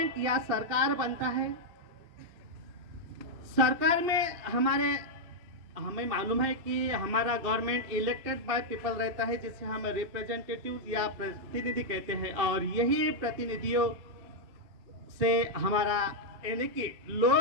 या सरकार बनता है, सरकार में हमें मालूम है कि हमारा गवर्नमेंट इलेक्टेड बाय पीपल रहता है, जिसे हम रिप्रेजेंटेटिव या प्रतिनिधि कहते हैं, और यही प्रतिनिधियों से हमारा यानी कि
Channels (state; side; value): late; left; 2.7 ms